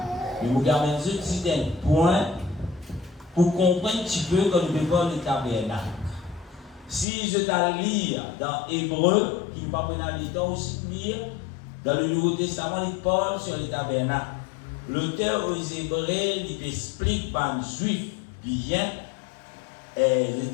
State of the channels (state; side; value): drops out; right; at 7.1 s